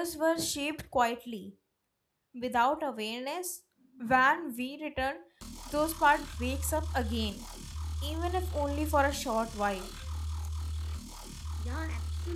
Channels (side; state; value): both; identical; correlation 1.00